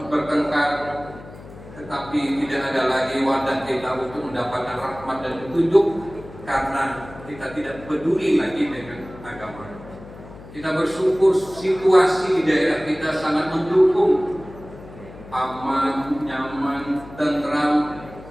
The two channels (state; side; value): noise; left; hum, 17 dB below the sound